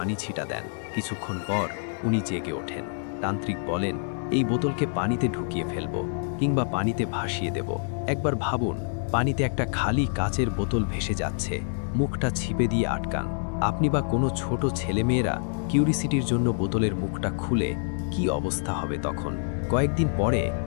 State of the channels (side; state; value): right; silent; digital silence